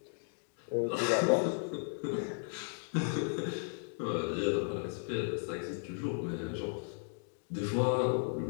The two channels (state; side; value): silent; right; digital silence